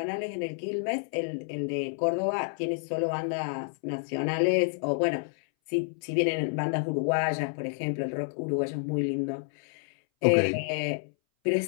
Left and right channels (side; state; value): right; silent; 58 dB below the other